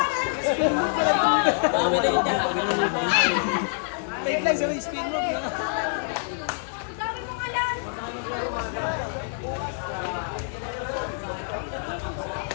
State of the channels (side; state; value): right; silent; 61 dB below the other